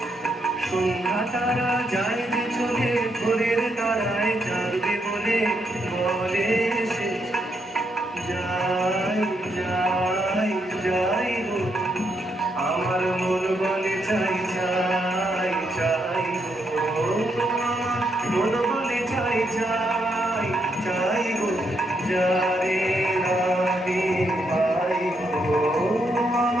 সন্ধ্যা তারা যায় যে চলে ভোরের তারায় জাগবে বলে বলে সে যাই যাই যাই গো, আমার মন বলে চাই চাই চাই গো, আমার মন বলে চাই চাই চাই গো, যারে আমি পাই গো,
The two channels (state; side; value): normal; both; correlation 0.78